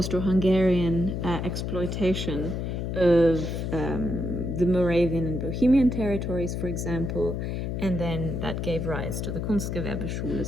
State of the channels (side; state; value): left; noise; hum, 3 dB below the sound